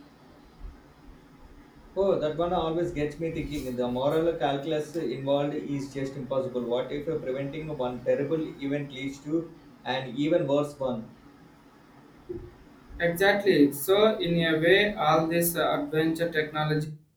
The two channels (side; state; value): both; identical; correlation 1.00